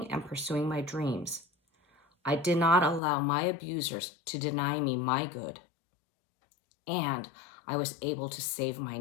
and pursuing my dreams. I did not allow my abusers to deny me my good. And I was able to save my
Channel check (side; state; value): right; drops out; at 3.0 s